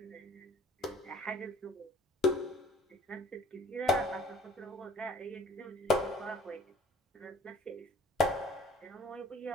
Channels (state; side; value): normal; both; correlation 0.53